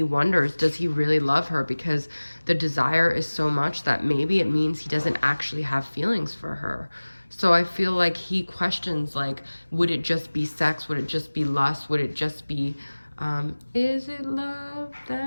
wonders, does he really love her? Because the desire is so much that maybe it means he doesn't actually have feelings for her. So I feel like he questions, like, would it just be sex? Would it just be lust? Would it just be, is it love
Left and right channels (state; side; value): inverted; both; correlation -1.00